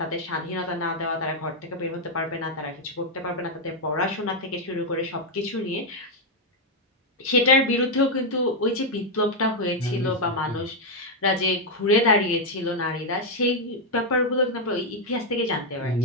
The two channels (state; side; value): normal; both; correlation 0.00